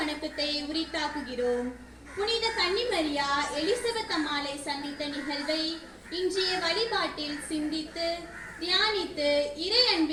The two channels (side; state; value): both; identical; correlation 1.00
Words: உரித்தாக்குகிறோம். புனித கன்னிமரியா எலிசபெத் அம்மாளை சந்தித்த நிகழ்வை இன்றைய வழிபாட்டில் சிந்தித்து தியானித்து இறை